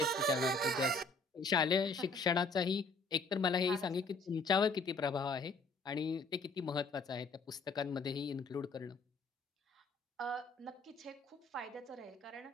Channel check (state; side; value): quieter; right; 3.5 dB